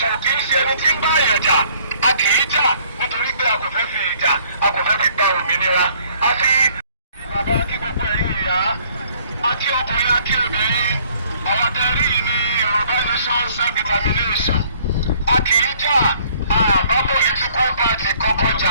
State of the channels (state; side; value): inverted; both; correlation -0.60